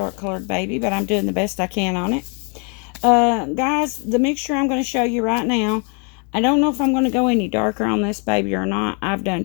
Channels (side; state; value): right; quieter; 36.3 dB